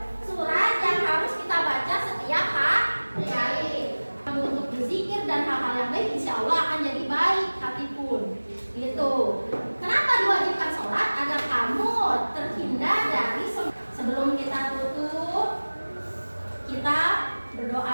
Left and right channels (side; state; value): both; inverted; correlation -1.00